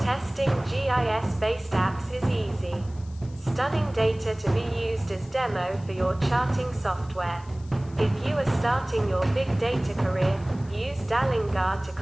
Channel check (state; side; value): noise; left; hiss, 27 dB below the sound